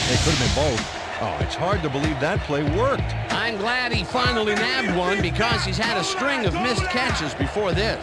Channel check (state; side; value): identical; both; correlation 1.00